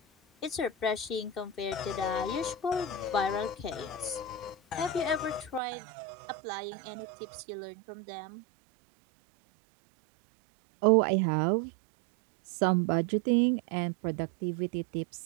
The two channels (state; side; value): drops out; left; at 5.6 s